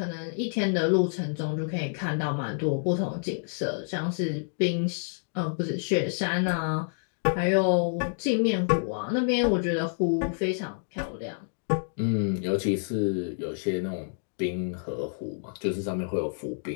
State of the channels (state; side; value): silent; right; digital silence